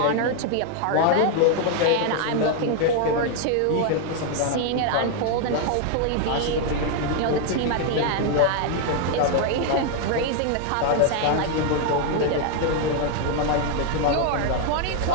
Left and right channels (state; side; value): different; both; correlation 0.00